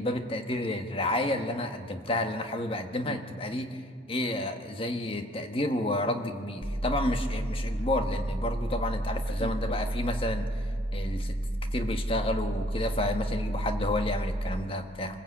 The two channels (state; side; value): normal; both; correlation 0.58